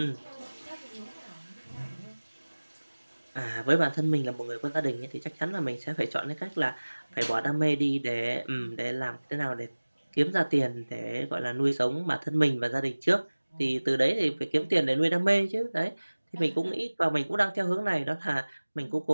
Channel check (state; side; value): inverted; both; correlation -1.00